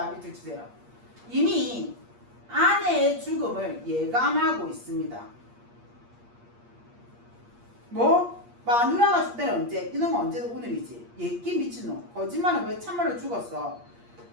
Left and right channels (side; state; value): left; late; 8.5 ms